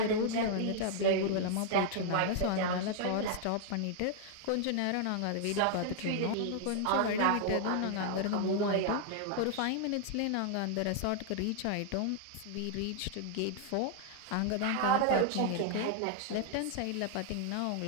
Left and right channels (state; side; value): different; both; correlation 0.00